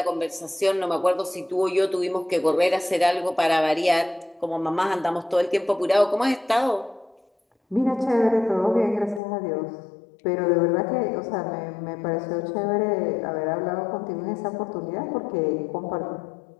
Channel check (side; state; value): right; drops out; at 9.2 s